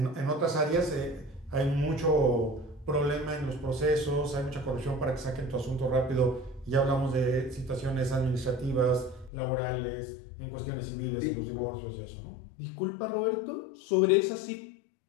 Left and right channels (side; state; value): right; drops out; at 9.3 s